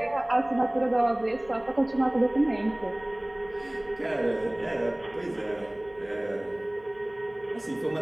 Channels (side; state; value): right; noise; hum, 27 dB below the sound